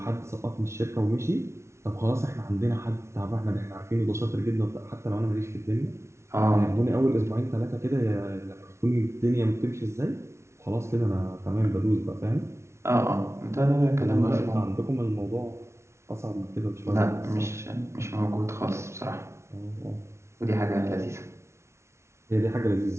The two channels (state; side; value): late; left; 0.13 ms